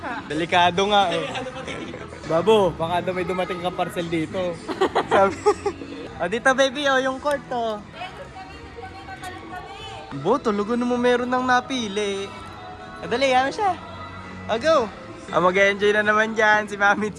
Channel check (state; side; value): identical; both; correlation 1.00